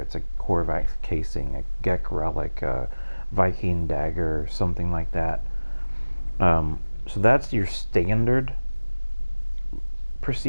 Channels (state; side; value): inverted; both; correlation -0.99